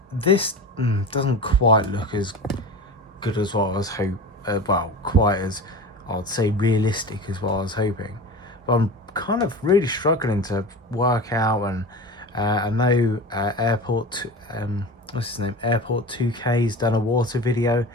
this doesn't quite look as good as what I was hoping. Well, quite as, I'd say, realistic as what I was hoping. But I'm kind of really struggling to work out, and I know Airport 2K's done a water video,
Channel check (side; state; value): both; normal; correlation 0.31